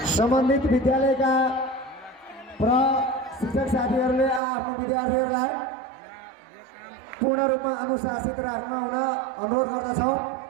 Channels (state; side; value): drops out; left; at 4.4 s